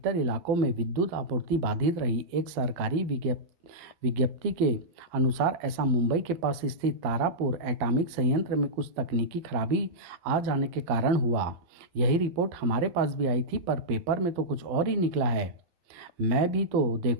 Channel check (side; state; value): left; late; 12 ms